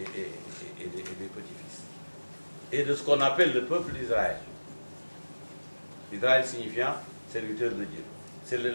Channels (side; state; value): both; inverted; correlation -1.00